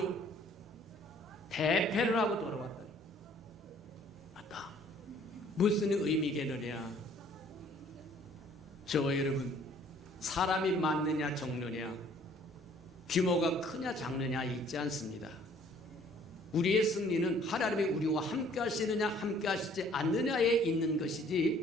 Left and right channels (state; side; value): normal; both; correlation 0.57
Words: 대패를 하고 돌아왔더니 맞다. 무슨 의미겠느냐. 저와 여러분, 사람이 많느냐 적느냐, 규모가 크냐 작느냐 있지 않습니다. 우리의 승리는 하나님이 우리와 함께 하시느냐 함께 하시지 않느냐에 있는